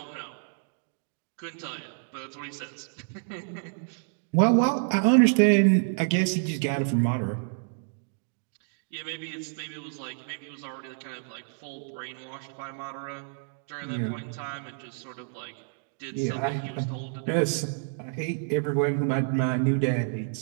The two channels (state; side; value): silent; left; digital silence